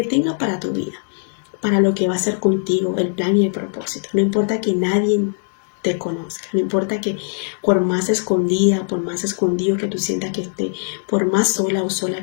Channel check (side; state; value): right; silent; digital silence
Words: tenga para tu vida, para lo que va a hacer contigo, el plan y el propósito. No importa que nadie te conozca, no importa que por más escondida, por más escondido que tú sientas que esté, por más sola o